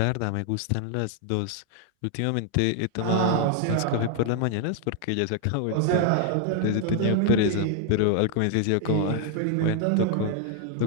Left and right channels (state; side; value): different; both; correlation 0.00